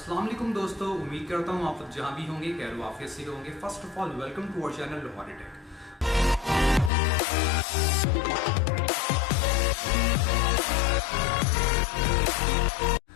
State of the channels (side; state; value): right; drops out; at 6.9 s